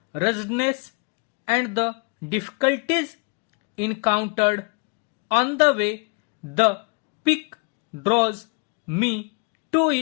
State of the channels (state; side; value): quieter; right; 33.5 dB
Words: ruggedness, and the difficulties encountered on the way, the peak draws me to